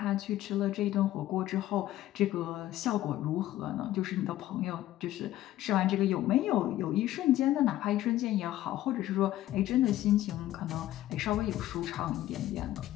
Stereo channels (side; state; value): right; quieter; 14.2 dB